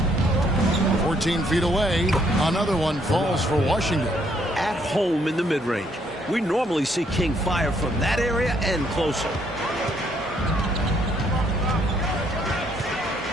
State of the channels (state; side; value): normal; both; correlation 0.69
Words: 14 feet away. Another one falls for Washington. At home in the mid-range. We normally see King fire from that area and closer.